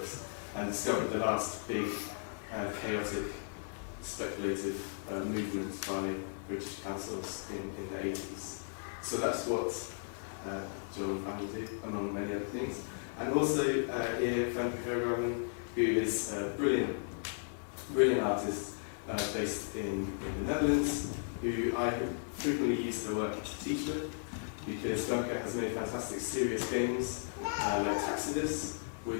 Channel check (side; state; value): right; silent; 54 dB below the other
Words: and discovered the last big chaotic speculative movement by British councils in the 80s. So that's what Joel and Fanny do, among many other things. And also here, Haisla, who is a brilliant artist based in the Netherlands, who I frequently use her work to teach with, because Femke has made fantastic serious games like Taxidus,